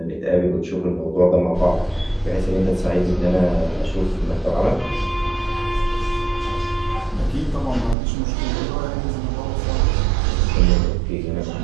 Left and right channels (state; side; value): drops out; left; at 8.0 s